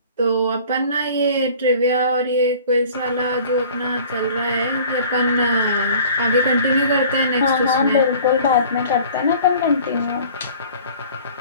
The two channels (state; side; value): inverted; both; correlation -0.47